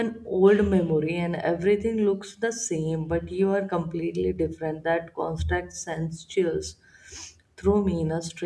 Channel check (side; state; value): both; identical; correlation 1.00